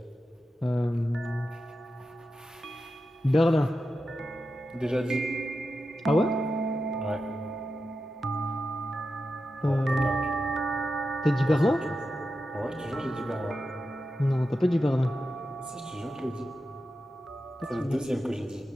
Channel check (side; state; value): both; normal; correlation 0.90